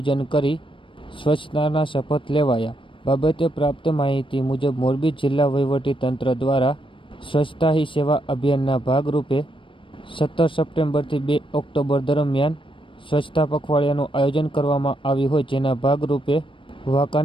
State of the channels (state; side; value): late; right; 0.25 ms